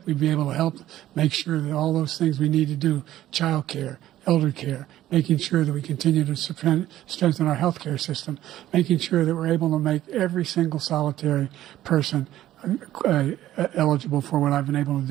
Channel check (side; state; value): left; quieter; 13.5 dB